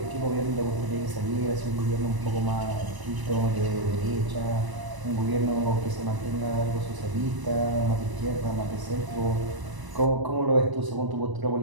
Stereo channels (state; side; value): late; left; 1.0 ms